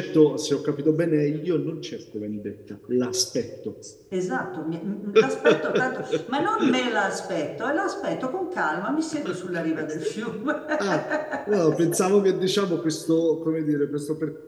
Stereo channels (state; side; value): identical; both; correlation 1.00